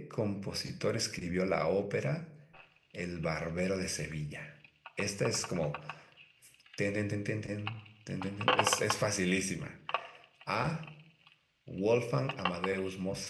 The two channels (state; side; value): identical; both; correlation 1.00